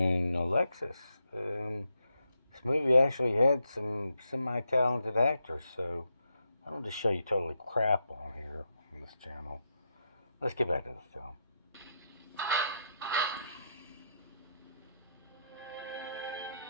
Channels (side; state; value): both; inverted; correlation -0.82